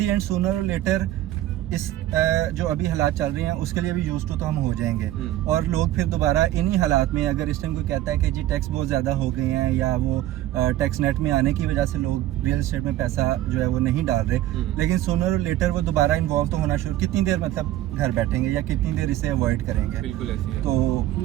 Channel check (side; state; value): left; quieter; 14.0 dB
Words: एंड सूनर और लेटर इस जो अभी हालात चल रहे हैं उसके लिए भी यूज टू तो हम हो जाएंगे, और लोग फिर दोबारा इन्हीं हालात में, अगर इस टाइम कोई कहता है कि जी टैक्स बहुत ज़्यादा हो गए हैं या वो टैक्स नेट में आने की वजह से लोग रियल एस्टेट में पैसा जो है वो नहीं डाल रहे, लेकिन सूनर और लेटर वो दोबारा इन्वॉल्व तो होना शुरू, कितनी देर मतलब घर बैठेंगे या कितनी देर इसे अवॉइड करेंगे। बिल्कुल ऐसी है। तो